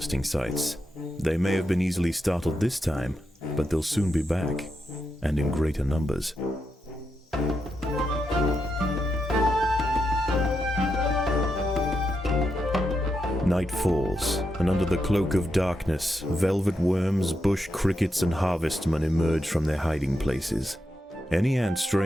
sites. They may have been easily startled this time, but they'll soon be back, and in greater numbers. Night falls, and under the cloak of darkness, velvet worms, bush crickets, and harvestmen emerge from their hiding places. Any ant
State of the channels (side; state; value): both; normal; correlation 0.85